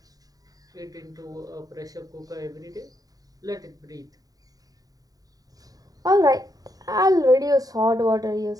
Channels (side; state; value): left; late; 0.18 ms